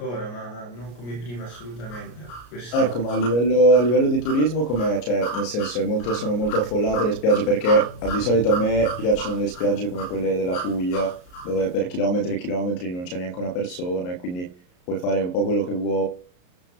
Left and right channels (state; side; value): late; right; 33 ms